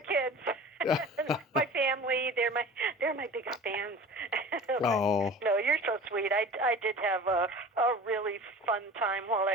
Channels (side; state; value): both; normal; correlation 0.40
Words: my family, they're my biggest fans. Oh, No, you're so sweet. I did have a really fun time while